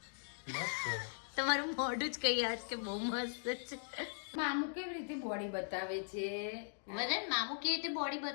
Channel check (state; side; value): silent; right; digital silence